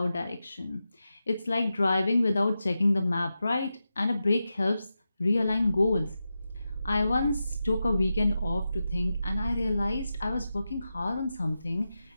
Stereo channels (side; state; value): both; inverted; correlation -0.90